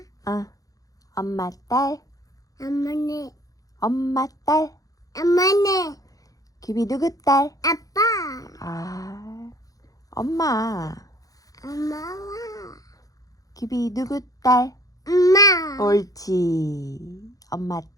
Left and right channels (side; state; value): right; late; 0.17 ms